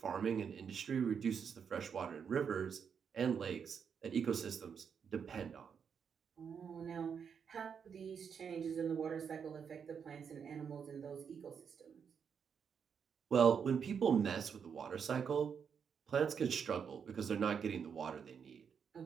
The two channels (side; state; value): left; quieter; 6.9 dB